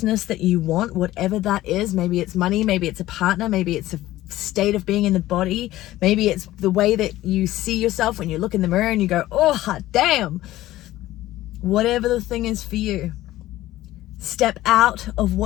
that you want, whatever that is. Maybe it's money, maybe it's a partner, maybe it's a state of being in the body, maybe it's the way that you see yourself when you look in the mirror and you go, oh hot damn. Whatever the thing is for you, step out of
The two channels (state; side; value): quieter; right; 15.7 dB